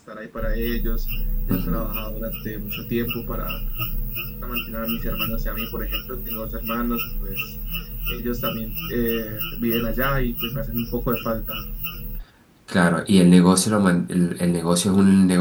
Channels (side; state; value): both; identical; correlation 1.00